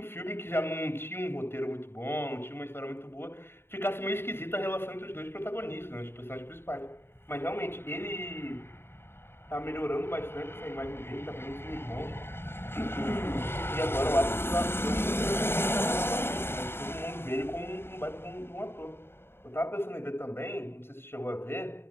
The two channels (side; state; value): right; late; 0.11 ms